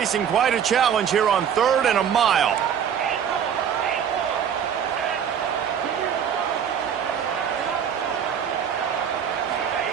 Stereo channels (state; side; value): quieter; left; 8.2 dB